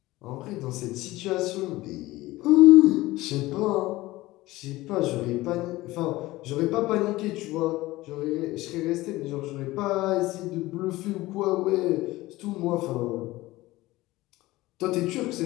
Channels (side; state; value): right; quieter; 18.5 dB